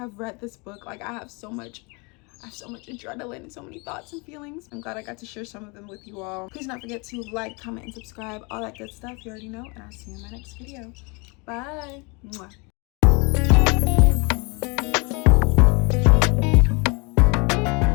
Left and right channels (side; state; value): right; quieter; 30.0 dB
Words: read this book. Like, I have so much adrenaline and so many thoughts and feelings. I'm glad I got to share some of them with you all. Please don't forget to like, comment, and subscribe, all that good stuff. You already know, and I'll see you in my next video. Bye. Mwah.